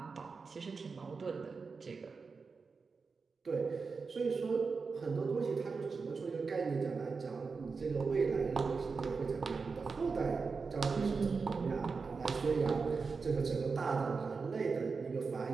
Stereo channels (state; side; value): quieter; left; 4.8 dB